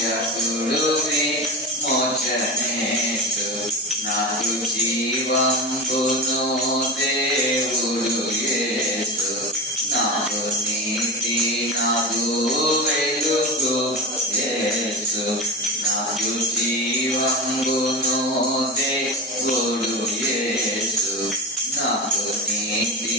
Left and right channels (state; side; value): normal; both; correlation 0.23